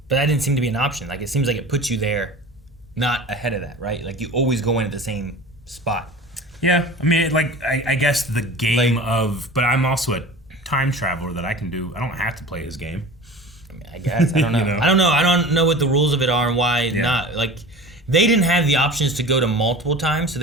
But that didn't seem to be an option. Like, it seems like it puts you there, not ahead of that, right? Like, you always go in at the same spot. Yeah, I mean, like, I guess the game of... But I'm also a time traveler that I can do... I don't have to play his game. I mean, I guess. I don't know. I don't know. I don't know what the rules of it are and why not. Like, they didn't have the options to go to multiple times, so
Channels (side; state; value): both; normal; correlation 0.38